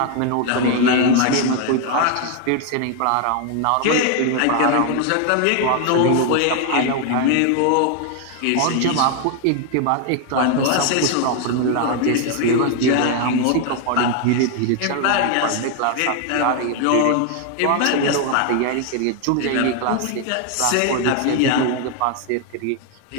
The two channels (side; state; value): both; different; correlation 0.01